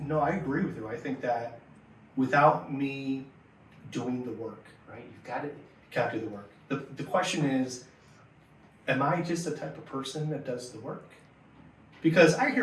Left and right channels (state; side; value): identical; both; correlation 1.00